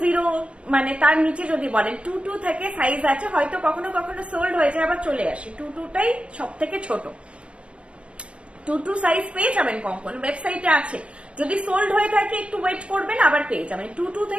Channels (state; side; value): late; left; 0.060 ms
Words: মানে তার নিচে যদি বলেন 22 থেকে সাইজ আছে, হয়তো কখনো কখনো সোল্ড হয়ে যায় আবার চলে আসে, 22টাই সব থেকে ছোট। 22 সাইজ পেয়ে যাবেন কঙ্কন, ওয়েবসাইটে আছে, যদি সোল্ড হয়ে থাকে একটু ওয়েট করবেন, আবার পেয়ে যাবেন। 22